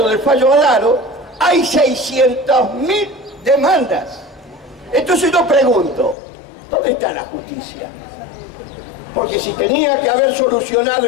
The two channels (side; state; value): right; drops out; at 6.2 s